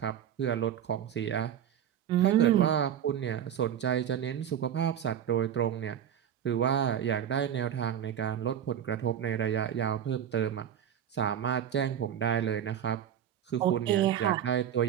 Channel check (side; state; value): left; quieter; 9.6 dB